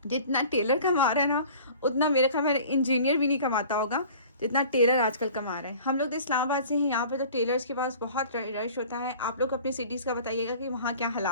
जितना टेलर कमा रहा है ना उतना मेरे ख्याल में इंजीनियर भी नहीं कमाता होगा जितना टेलर आजकल कमा रहा है। हम लोग तो इस्लामाबाद से हैं, यहाँ पे तो टेलर्स के पास बहुत रश होता है। आप लोग अपनी सिटीज़ का बताइएगा कि वहाँ क्या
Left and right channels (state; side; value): inverted; both; correlation -0.45